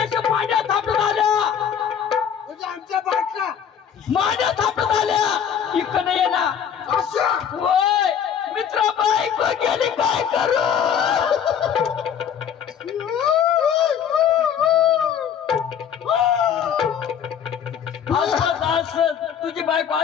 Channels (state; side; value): quieter; right; 8.3 dB